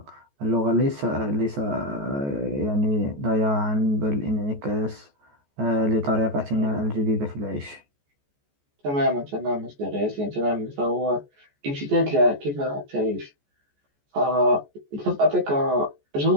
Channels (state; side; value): late; left; 14 ms